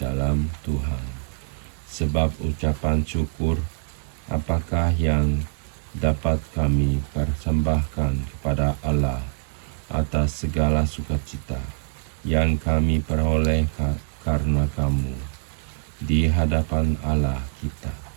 Tuhan. Sebab ucapan syukur apakah yang dapat kami persembahkan kepada Allah atas segala sukacita yang kami peroleh karena kamu di hadapan Allah kita.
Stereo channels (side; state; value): left; silent; 58 dB below the other